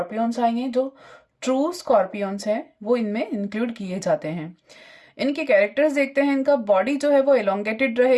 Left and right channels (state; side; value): identical; both; correlation 1.00